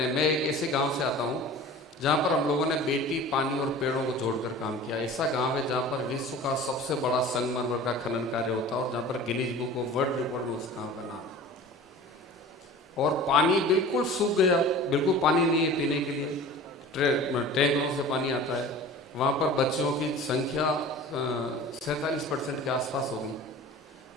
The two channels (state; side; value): normal; both; correlation 0.40